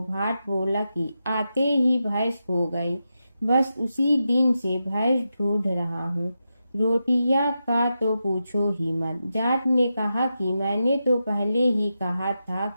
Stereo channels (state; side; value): inverted; both; correlation -0.89